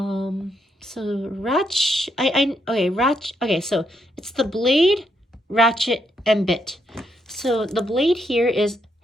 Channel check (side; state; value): both; normal; correlation 0.77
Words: So okay, so it's the blade, ratchet, and bit. So the blade here is